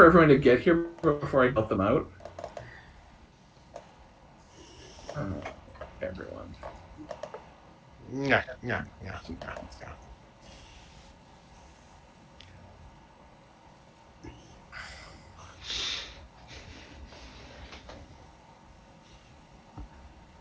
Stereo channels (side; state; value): both; identical; correlation 1.00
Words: everyone to get here before I built them out. Everyone. Yeah.